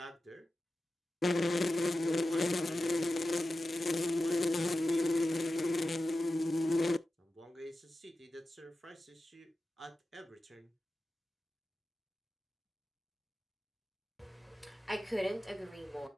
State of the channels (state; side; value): normal; both; correlation 0.93